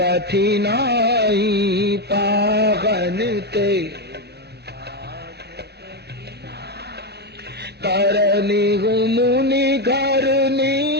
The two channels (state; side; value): late; left; 0.48 ms